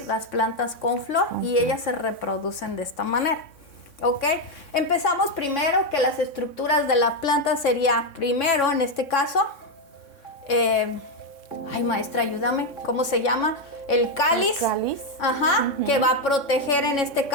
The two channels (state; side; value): late; right; 3.6 ms